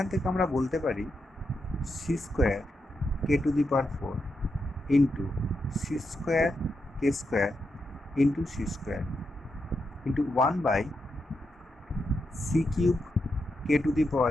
থেকে আমরা বলতে পারি c square K to the power 4 into C square K square into C square into 1 by C cube K to the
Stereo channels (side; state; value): both; normal; correlation 0.84